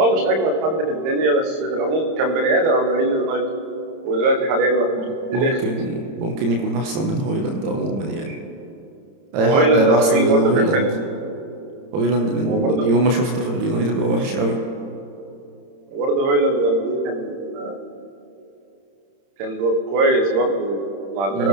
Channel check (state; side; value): late; left; 31 ms